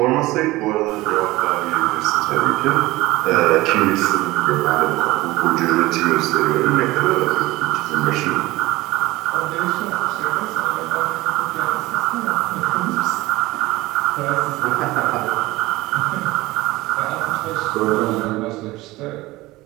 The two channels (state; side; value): quieter; left; 19.3 dB